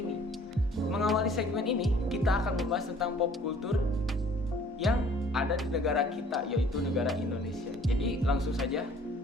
Mengawali segmen ini, kita akan membahas tentang pop culture yang ada di negara kita, yaitu negara Indonesia. Jadi langsung saja,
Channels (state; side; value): normal; both; correlation 0.55